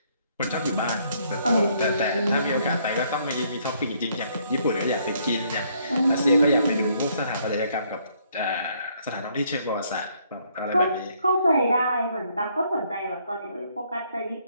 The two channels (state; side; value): inverted; both; correlation -0.68